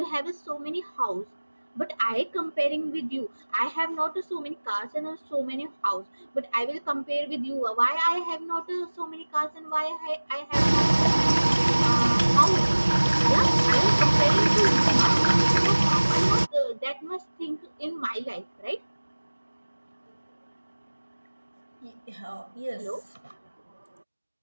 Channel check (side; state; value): both; inverted; correlation -1.00